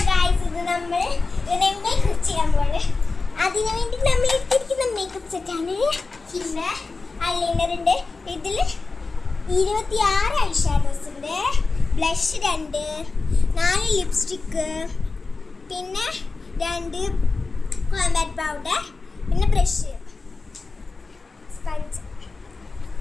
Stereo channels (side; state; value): right; quieter; 3.9 dB